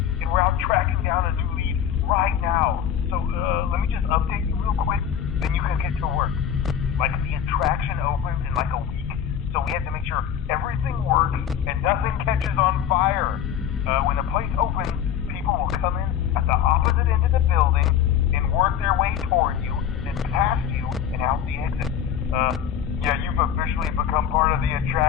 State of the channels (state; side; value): quieter; right; 9.1 dB